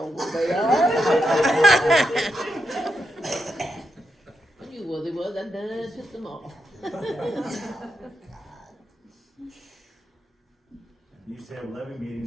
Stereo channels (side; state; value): both; normal; correlation 0.84